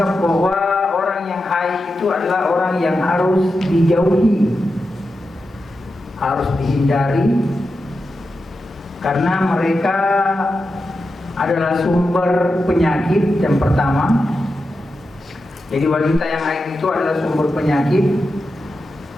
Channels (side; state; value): both; normal; correlation 0.90